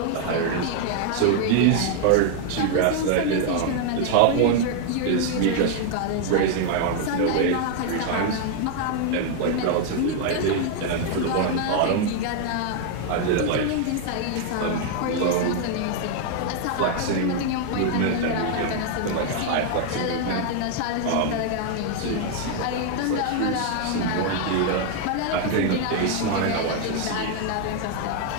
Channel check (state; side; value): different; both; correlation 0.00